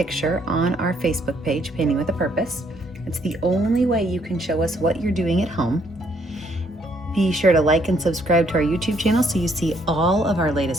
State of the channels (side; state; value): both; normal; correlation 0.69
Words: on our Facebook page, Painting with a Purpose. It's the only way you can show us what you're doing at home. Be sure to like and subscribe to our YouTube channel so you see all of our